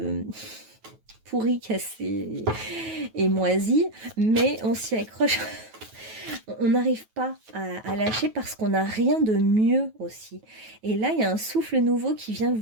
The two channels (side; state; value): left; late; 9.2 ms